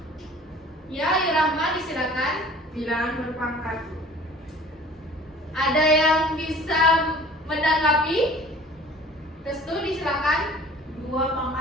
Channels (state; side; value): normal; both; correlation 0.47